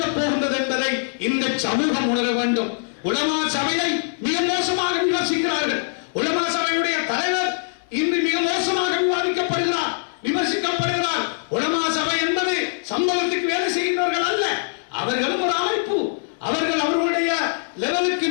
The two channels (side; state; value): right; silent; 64 dB below the other